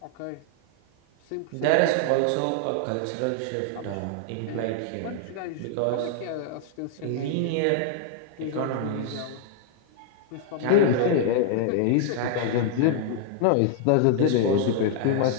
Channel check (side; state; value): both; different; correlation -0.01